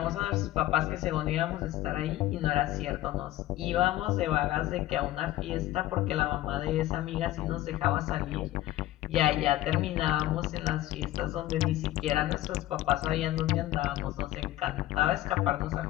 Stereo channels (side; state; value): right; quieter; 15.2 dB